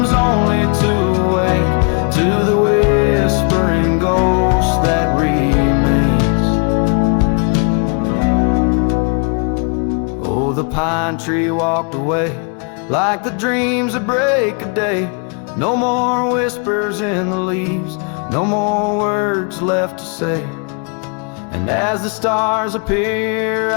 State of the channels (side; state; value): right; quieter; 37.5 dB